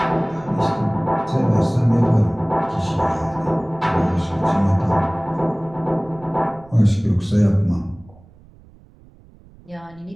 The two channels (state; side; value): noise; right; rumble, 25 dB below the sound